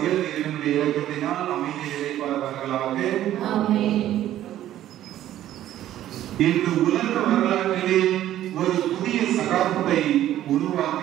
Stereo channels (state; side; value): quieter; left; 12.7 dB